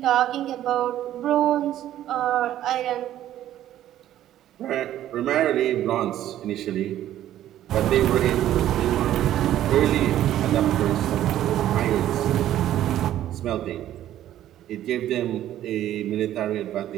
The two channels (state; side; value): quieter; left; 12.4 dB